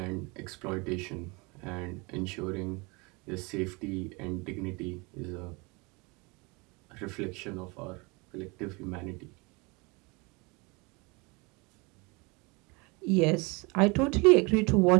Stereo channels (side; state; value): left; quieter; 27.8 dB